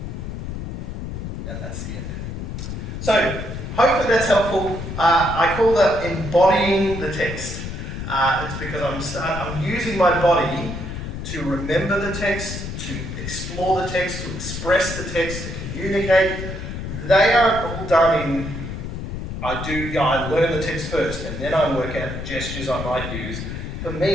And that's the end. So, hopefully that's helpful. I call that embodying the text. It's because I'm using my body to remember the text, to explore the text, to express the text, to communicate. They are all done in, I learn the text first, and then I work out gestures I might use. For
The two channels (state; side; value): noise; left; rumble, 6 dB below the sound